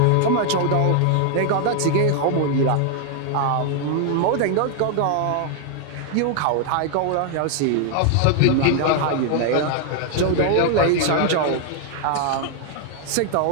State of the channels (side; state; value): both; different; correlation 0.00